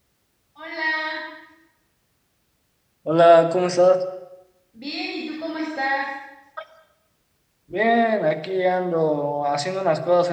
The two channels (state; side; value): identical; both; correlation 1.00